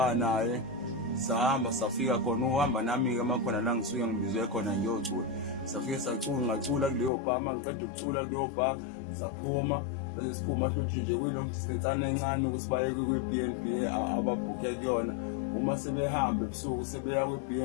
naye, sahamba safika khona. Uhamba nami-ke makhona la ngisuke ngibizwe khona ngiyocula. Safike ngacula kuleyo bha. Uma ngiceda ukucula kuleyo bha saphuma, bese siphuma futhi nje kuyilong distance encane ukuthi baye kwi-B&B ababhukhe kuyona. Uma sebehamba ebusuku sebeya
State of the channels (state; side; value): drops out; right; at 7.1 s